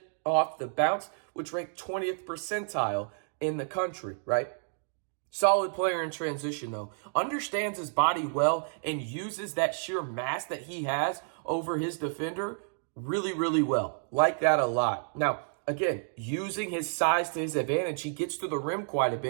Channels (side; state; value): left; silent; digital silence